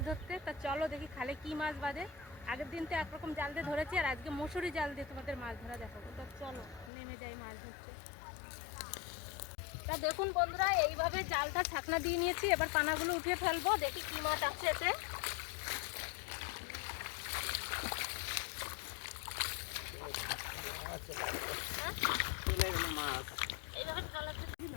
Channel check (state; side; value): drops out; right; at 6.9 s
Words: ধরতে। তা চলো দেখি খালে কি মাছ বাঁধে। আগের দিন তো একরকম জাল দিয়ে ধরেছি, আর আজকে মশুরি জাল দিয়ে তোমাদের মাছ ধরা দেখাবো। তা চলো নেমে যাই মাছ ধরতে। তা দেখুন বন্ধুরা, এইভাবে জালটা ছাকনা দিয়ে নিয়েছি। এবার পানাগুলো উঠিয়ে ফেলবো, দেখি কি মাছ আছে এতে।